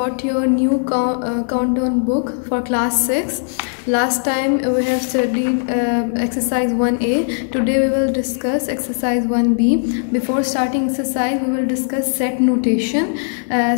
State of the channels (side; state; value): right; silent; digital silence